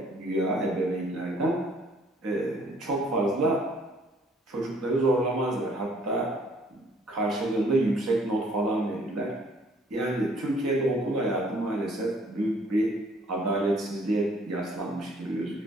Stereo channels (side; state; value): both; normal; correlation 0.61